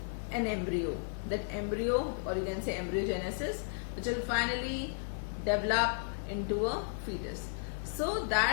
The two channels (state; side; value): silent; right; 55 dB below the other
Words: an embryo. That embryo, or you can say embryogenesis, which will finally develop into a fetus. So